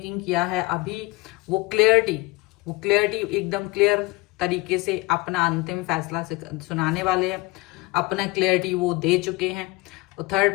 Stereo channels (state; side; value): quieter; right; 22.3 dB